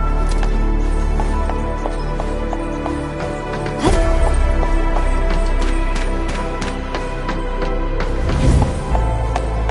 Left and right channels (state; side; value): identical; both; correlation 1.00